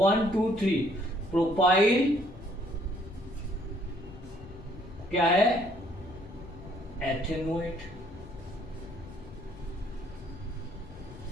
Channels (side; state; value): left; noise; rumble, 17 dB below the sound